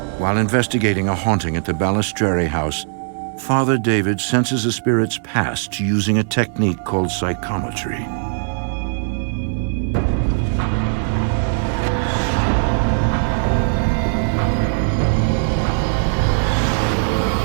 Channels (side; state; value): left; silent; digital silence